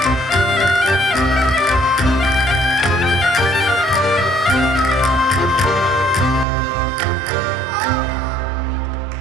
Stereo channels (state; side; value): drops out; left; at 6.5 s